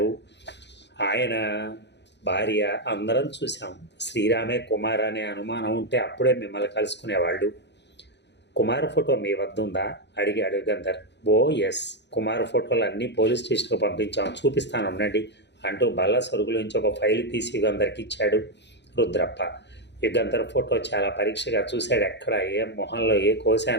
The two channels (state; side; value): late; right; 0.51 ms